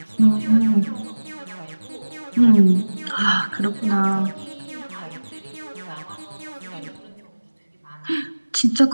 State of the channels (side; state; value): both; inverted; correlation -1.00